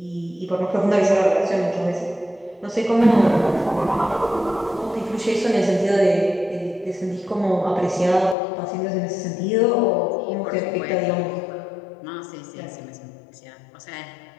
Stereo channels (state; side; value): drops out; right; at 8.3 s